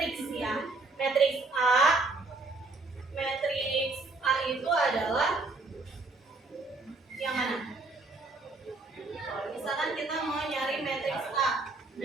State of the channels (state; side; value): quieter; left; 3.5 dB